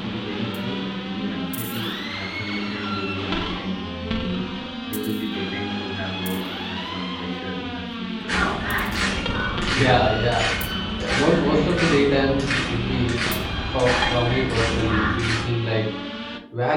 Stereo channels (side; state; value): both; identical; correlation 1.00